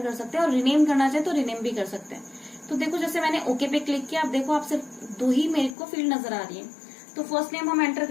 कर सकते हैं, और रिनेम करना चाहे तो रिनेम भी कर सकते हैं। तो देखो जैसे मैंने ओके पे क्लिक किया, अब देखो आप सिर्फ 2 ही मेरे को फील्ड नजर आ रही है। तो फर्स्ट नेम हम एंटर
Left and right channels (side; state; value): right; drops out; at 5.8 s